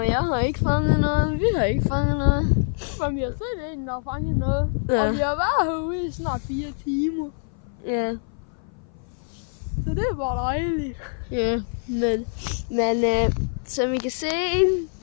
jeg har ikke fanget noget. Vi har ikke fanget noget. Men vi har set en, der har fanget noget. Ja. Og vi har været herude i snart 4 timer. Ja. Så det er bare dejligt. Ja, men som I kan se,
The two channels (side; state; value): right; silent; 57 dB below the other